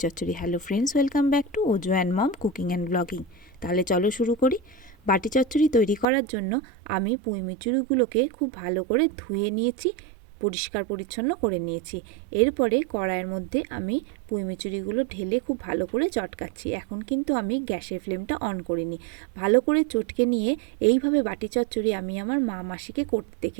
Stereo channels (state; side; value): drops out; left; at 6.1 s